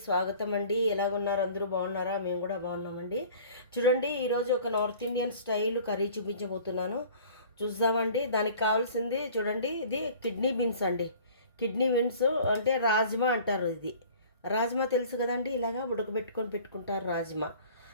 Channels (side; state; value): both; inverted; correlation -0.47